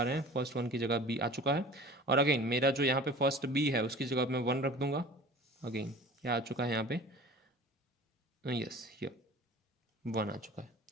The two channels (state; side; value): normal; both; correlation 0.42